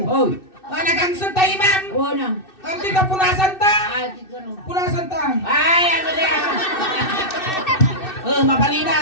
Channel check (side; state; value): right; late; 2.6 ms